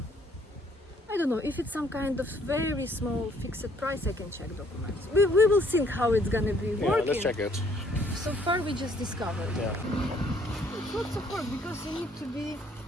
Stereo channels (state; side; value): normal; both; correlation 0.64